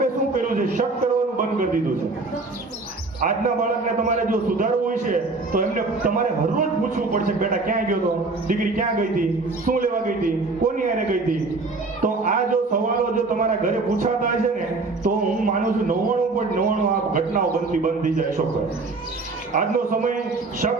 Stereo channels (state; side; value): quieter; left; 3.6 dB